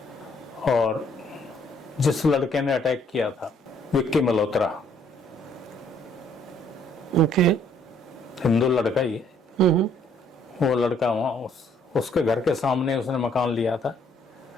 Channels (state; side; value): normal; both; correlation 0.65